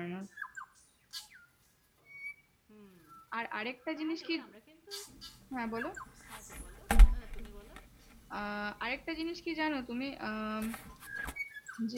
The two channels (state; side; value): identical; both; correlation 1.00